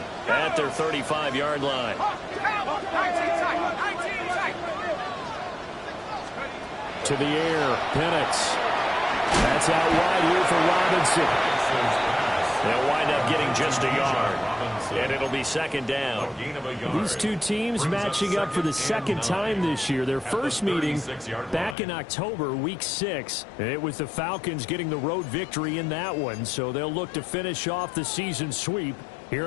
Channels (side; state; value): right; drops out; at 21.8 s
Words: at their 35-yard line. To the air, Penix. That's out wide here for Robinson. They'll wind up getting just a yard. And it'll be 2nd down. These two teams matching up for the 2nd time this year. Their first meeting back in October, week 6. It was the Falcons getting the road victory in that one, so they'll look to finish off the season sweep